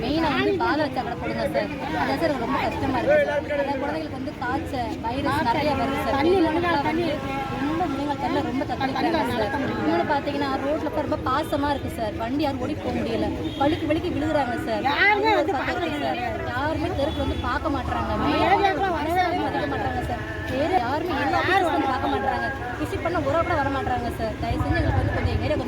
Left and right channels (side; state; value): both; identical; correlation 1.00